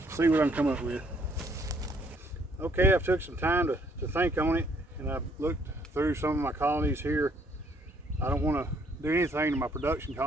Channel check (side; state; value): both; normal; correlation 0.65